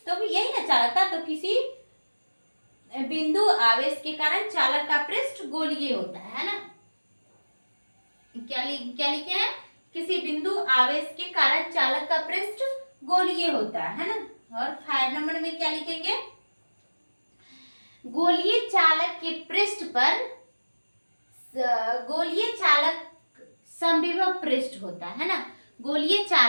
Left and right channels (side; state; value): both; inverted; correlation -1.00